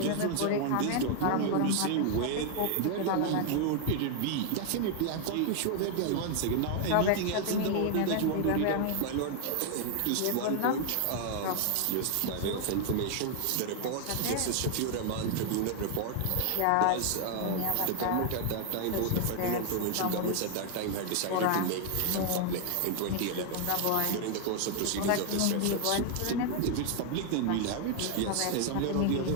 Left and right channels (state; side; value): different; both; correlation 0.00